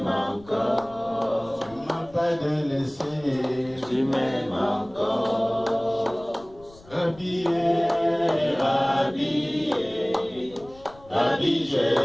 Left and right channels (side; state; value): left; noise; rumble, 24 dB below the sound